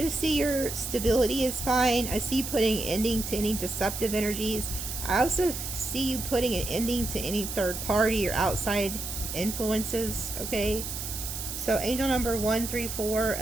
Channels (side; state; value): right; noise; hiss, 6 dB below the sound